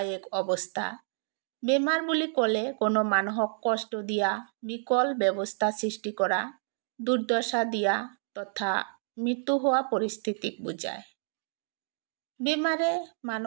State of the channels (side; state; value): left; silent; digital silence